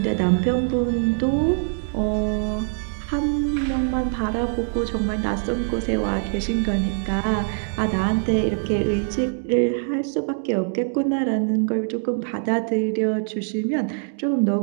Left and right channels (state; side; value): silent; left; digital silence